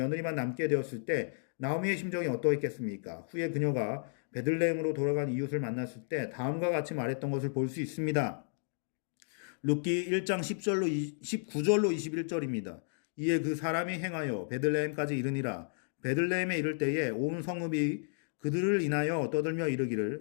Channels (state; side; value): silent; right; digital silence